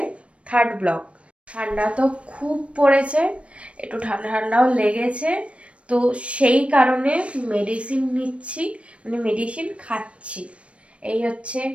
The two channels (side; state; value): left; late; 0.062 ms